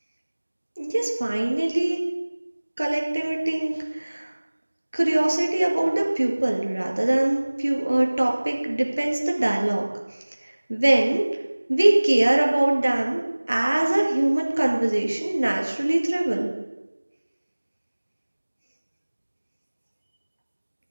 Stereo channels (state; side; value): inverted; both; correlation -1.00